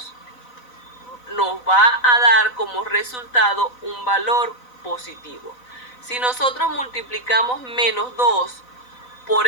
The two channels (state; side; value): late; right; 4.0 ms